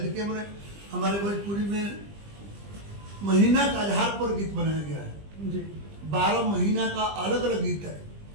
देखिए हमारे भोजपुरी में महीना के आधार पर गीत बनाया गया है। 12 महीना का अलग अलग गीत है।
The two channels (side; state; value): left; late; 20 ms